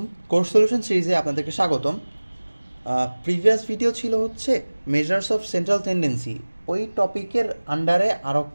Course solution সিরিজে আপনাদেরকে স্বাগতম। প্রিভিয়াস ভিডিও ছিল হচ্ছে মেজার্স অফ সেন্ট্রাল টেন্ডেন্সি। ওই টপিকের আন্ডারে আরও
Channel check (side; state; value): both; inverted; correlation -1.00